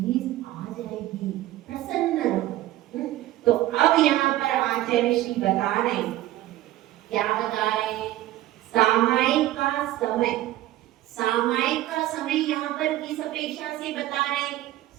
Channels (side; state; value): left; quieter; 15.1 dB